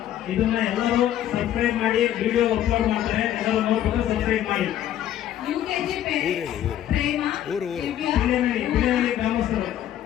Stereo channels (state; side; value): quieter; right; 11.6 dB